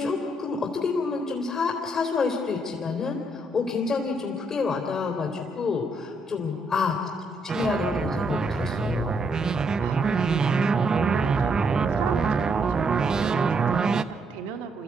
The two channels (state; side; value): normal; both; correlation 0.74